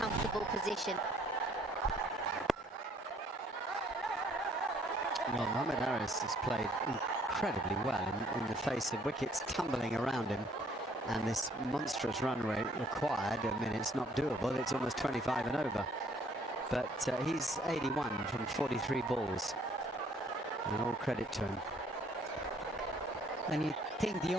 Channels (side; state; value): both; normal; correlation 0.62